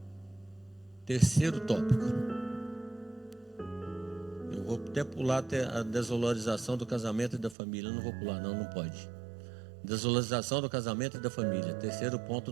Terceiro tópico. Eu vou até pular até a desvalorização do casamento e da família. Eu não vou pular, não pode. Desvalorização do casamento e da família. Terceiro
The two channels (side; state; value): left; drops out; at 7.6 s